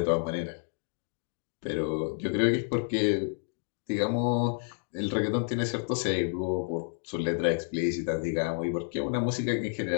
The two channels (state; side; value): silent; right; digital silence